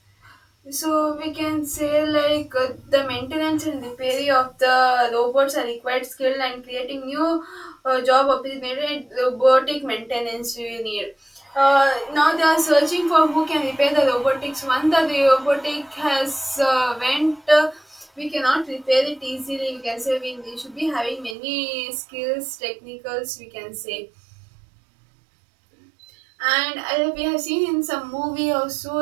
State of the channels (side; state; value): left; drops out; at 21.4 s